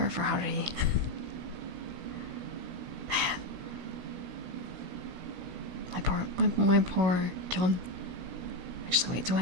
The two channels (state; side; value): late; left; 17 ms